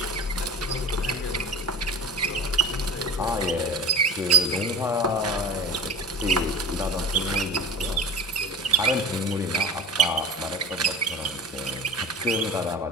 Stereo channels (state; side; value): normal; both; correlation 0.32